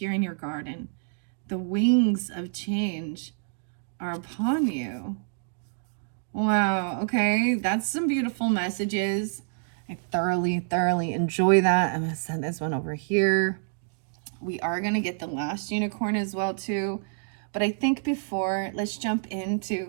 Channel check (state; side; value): silent; left; digital silence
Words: in your garden. The wings of change are upon you. Wow, okay, that's some beautiful messages. I thoroughly enjoy that. I'm going to send this one over here. We are going to get the last unicorn as well too. But I think before, let's jump